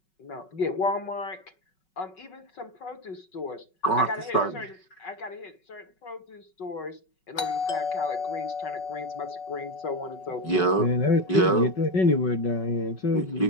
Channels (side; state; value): right; late; 5.4 ms